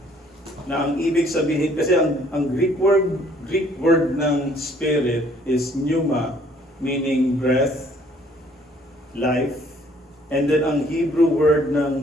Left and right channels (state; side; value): normal; both; correlation 0.61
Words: na ang ibig sabihin, kasi ang Greek word ng spirit is pneuma, meaning breath, life. And then ang Hebrew word